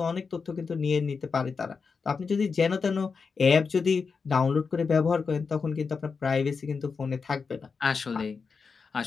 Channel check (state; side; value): quieter; right; 5.2 dB